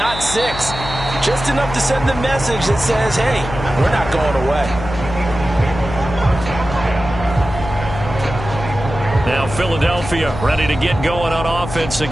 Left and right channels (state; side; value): noise; left; hum, 9 dB below the sound